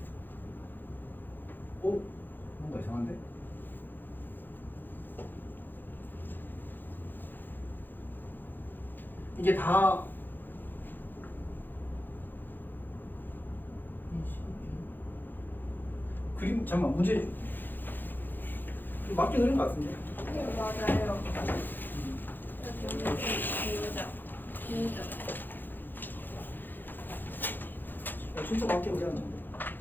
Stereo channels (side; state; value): right; late; 0.091 ms